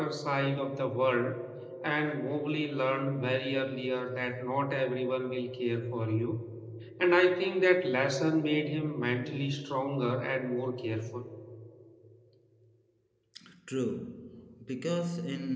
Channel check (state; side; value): identical; both; correlation 1.00